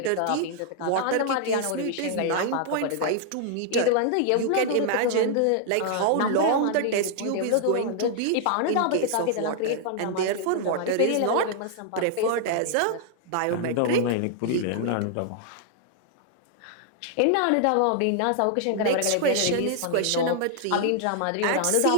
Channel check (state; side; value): different; both; correlation -0.01